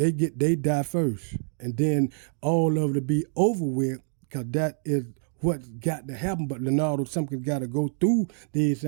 die first. And then all of it be over with, because that is what's got to happen. But Leonardo Simpkins got to go through these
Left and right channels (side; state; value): left; silent; digital silence